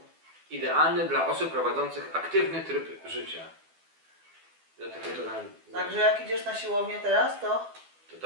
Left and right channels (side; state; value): left; late; 12 ms